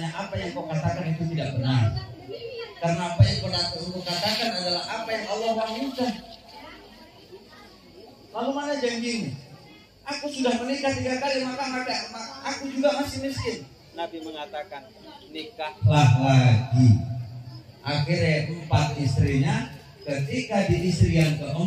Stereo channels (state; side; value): identical; both; correlation 1.00